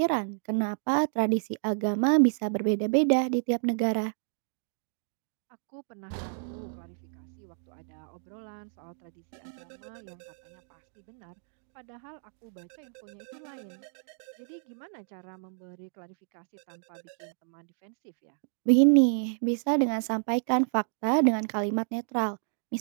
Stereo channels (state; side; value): silent; left; digital silence